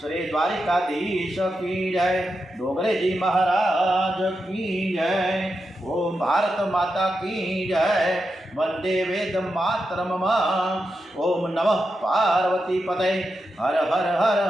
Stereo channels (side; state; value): both; normal; correlation 0.88